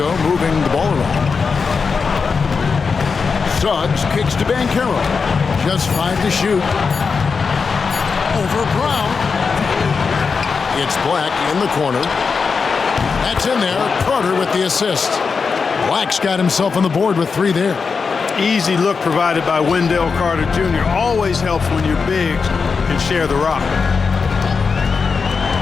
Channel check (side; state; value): right; quieter; 5.2 dB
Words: moving the ball around. Suggs kicks to Banchero. Just 5 to shoot. Over Brown. It's Black in the corner. That's in there. Carter with the assist. Black's got himself on the board with 3 there. Easy look provided by Wendell Carter Jr. Always helps when your bigs can share the rock.